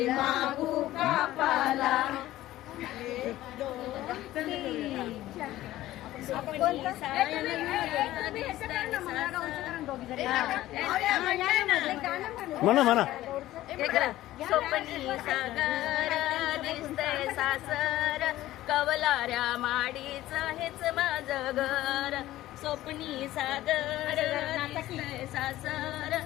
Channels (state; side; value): quieter; right; 15.2 dB